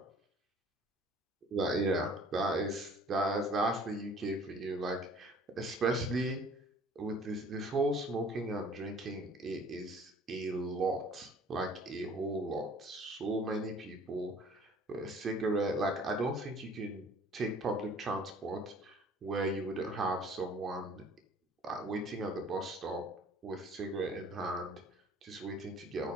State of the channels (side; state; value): both; normal; correlation 0.52